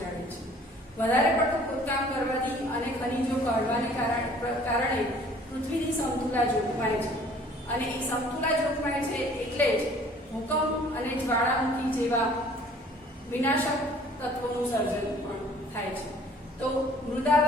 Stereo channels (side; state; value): both; normal; correlation 0.53